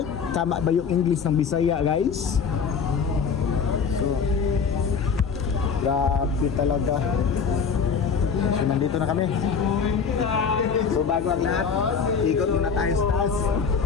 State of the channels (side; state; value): right; quieter; 6.1 dB